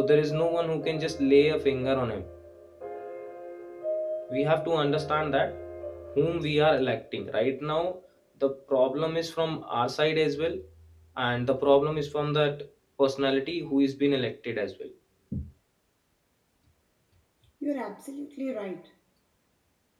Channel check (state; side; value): identical; both; correlation 1.00